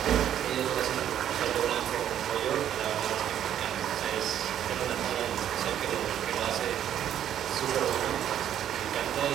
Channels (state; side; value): quieter; left; 10.4 dB